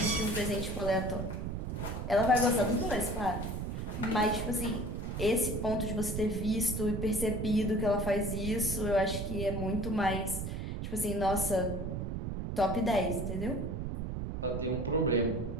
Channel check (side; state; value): right; noise; rumble, 4 dB below the sound